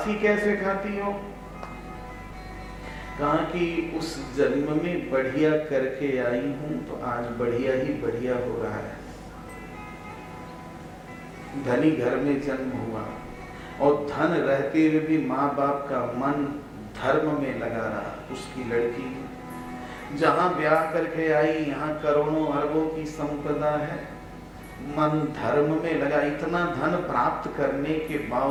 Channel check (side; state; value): both; identical; correlation 1.00